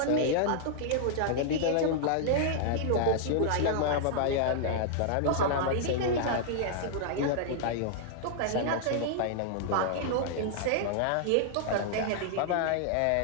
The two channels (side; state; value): both; different; correlation -0.01